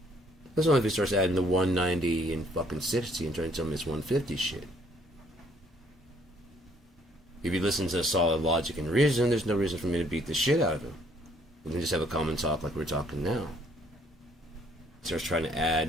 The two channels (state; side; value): normal; both; correlation 0.63